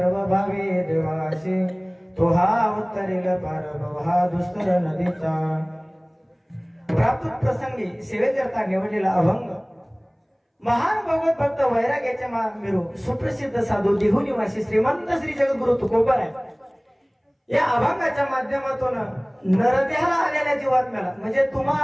भावे देवासी तो हा उत्तरेल पारभव हा दुस्तर नदीचा प्राप्त प्रसंगी सेवेकरता निवडलेला अभंग महान भगवत भक्त वैराग्याच्या मेरू सुप्रसिद्ध साधू देहू निवासी श्रीमंत श्री जगद्गुरु तुकोबर आहे. या अभंगाच्या माध्यमातून नरदेहाला आलेल्या जीवात्म्याला म्हणजे तुम्हा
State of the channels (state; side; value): identical; both; correlation 1.00